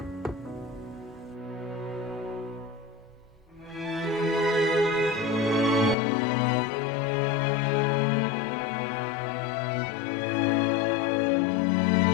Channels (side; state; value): right; drops out; at 6.0 s